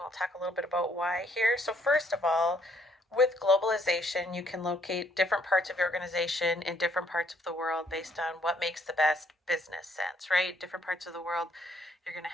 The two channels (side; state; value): both; normal; correlation 0.67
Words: we'll talk a little bit about why here. So first of all, with globalization, you can locate different parts of your organization in different parts of the world based on what makes the best business sense, right? Different parts of the world, you're going